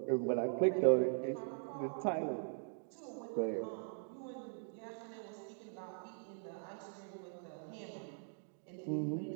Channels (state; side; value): silent; left; digital silence